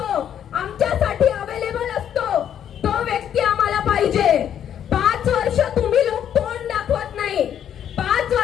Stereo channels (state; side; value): quieter; right; 9.5 dB